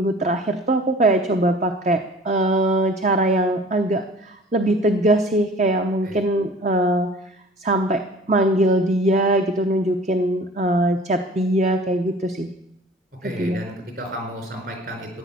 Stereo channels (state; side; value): normal; both; correlation 0.47